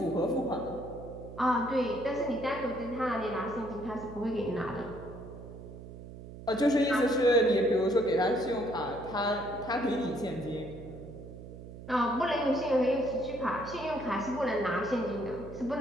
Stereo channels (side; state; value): right; noise; hum, 14 dB below the sound